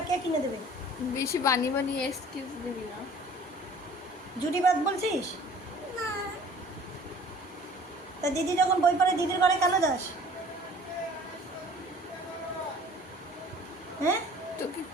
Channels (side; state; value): both; normal; correlation 0.49